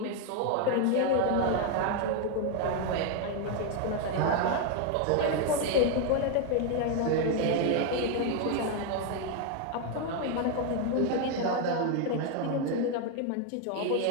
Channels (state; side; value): different; both; correlation 0.01